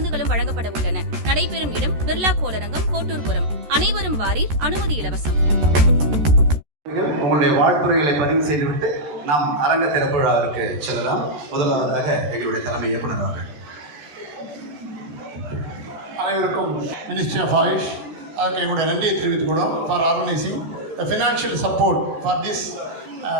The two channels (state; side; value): late; left; 13 ms